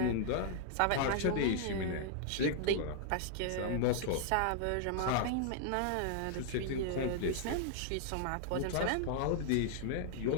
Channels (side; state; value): both; different; correlation -0.01